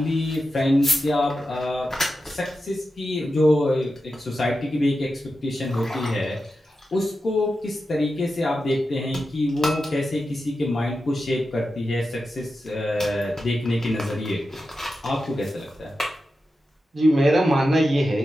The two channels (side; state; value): both; normal; correlation 0.91